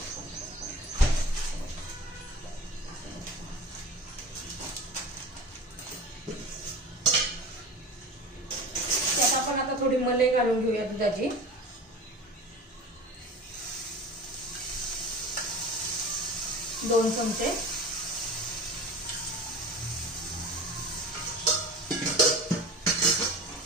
त्यात आपण आता थोडी मलाई घालून घेऊया दुधाची. दोन चमचे.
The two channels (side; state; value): both; normal; correlation 0.35